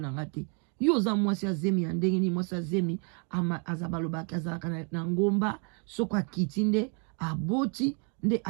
nanga te yo za mwasi azemi ya ndenge ni mwasi azemi azabalobaki azalaka na ngomba soko akiti nde aboti nde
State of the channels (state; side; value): quieter; left; 36.4 dB